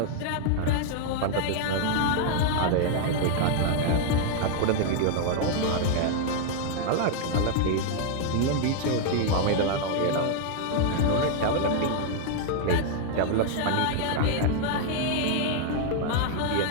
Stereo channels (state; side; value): different; both; correlation 0.00